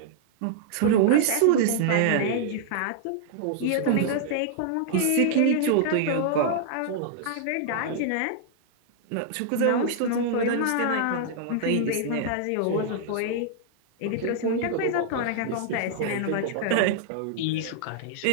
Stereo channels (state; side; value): different; both; correlation -0.01